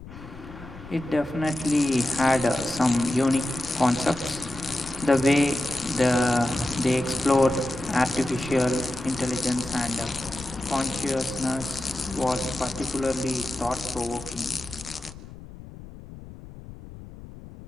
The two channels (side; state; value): left; noise; rumble, 15 dB below the sound